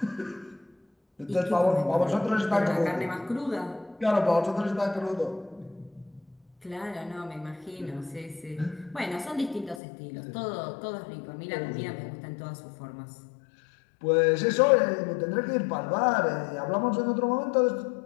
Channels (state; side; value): drops out; right; at 9.8 s